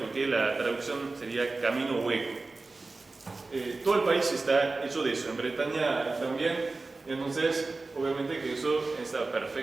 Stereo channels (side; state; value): left; quieter; 3.5 dB